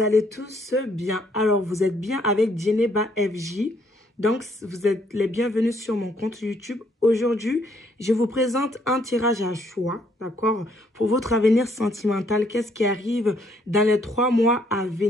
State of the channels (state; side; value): normal; both; correlation 0.68